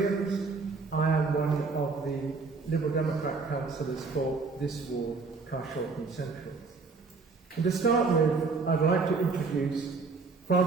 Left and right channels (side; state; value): left; quieter; 4.3 dB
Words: I am one of the Liberal Democrat councillors for this ward, Carshalton Central. And to start with, I'd like to introduce